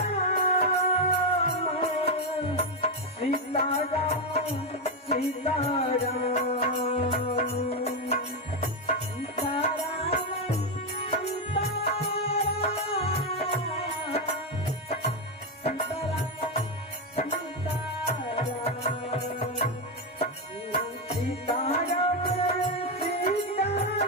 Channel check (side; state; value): both; normal; correlation 0.07